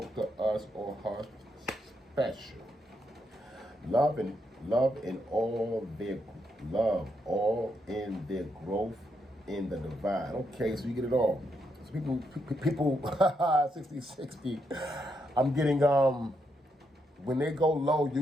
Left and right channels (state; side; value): normal; both; correlation 0.80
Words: to us or her special. Love all in their growth in the divine. Okay, so you get it all. So people 60. I'm getting when they go low,